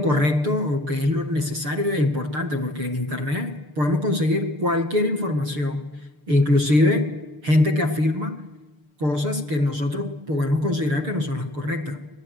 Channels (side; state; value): left; late; 6.7 ms